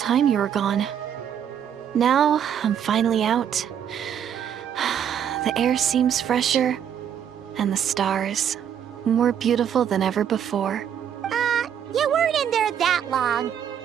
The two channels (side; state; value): left; quieter; 9.0 dB